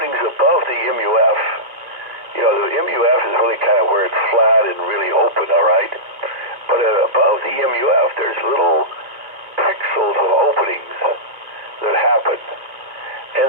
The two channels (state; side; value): late; left; 2.2 ms